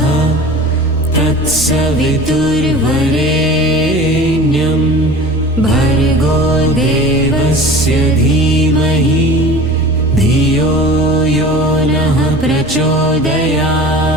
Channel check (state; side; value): normal; both; correlation 0.39